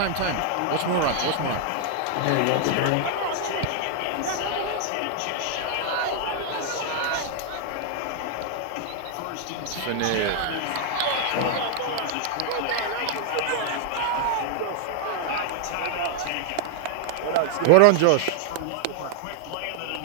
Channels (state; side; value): different; both; correlation 0.00